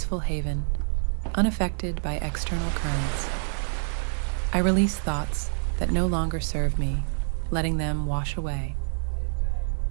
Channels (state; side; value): silent; left; digital silence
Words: haven, unaffected by external currents. I release thoughts that no longer serve me, letting them wash away.